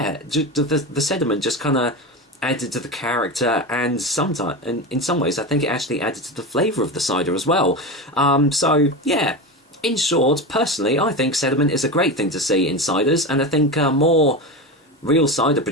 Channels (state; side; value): normal; both; correlation 0.22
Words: the sediment just kind of added to the character, and sometimes, and in some ways, I think it actually added to the flavour of the cider as well. So yeah, in short, personally, I think sediment is a great thing to see in ciders, and I think more real cider